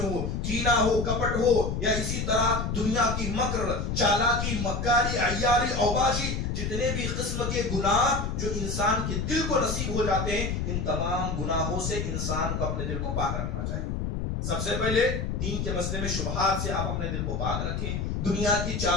ہو، کینہ ہو، کپٹ ہو، یا اسی طرح دنیا کی مکر، چالاکی، مکاری، عیاری، اوباشی، جتنے بھی قسم کے گناہ جو انسان کے دل کو نصیب ہو جاتے ہیں، ان تمام گناہوں سے انسان کو اپنے دل کو پاک رکھنا چاہیے۔ سب سے پہلے دین کے مسئلے میں شبہات سے آپ اپنے دل کو پاک رکھیں، دنیا کی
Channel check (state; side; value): noise; left; rumble, 2 dB below the sound